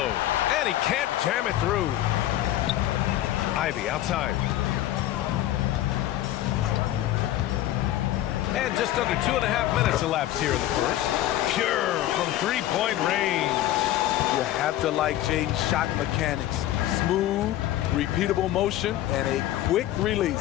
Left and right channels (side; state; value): right; quieter; 13.8 dB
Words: And he can't jam it through. Ivy outside. And just under 2.5 minutes elapsed here in the first. Pure from 3-point range. You have to like Jaden's shot mechanics. Smooth, repeatable motion, and a quick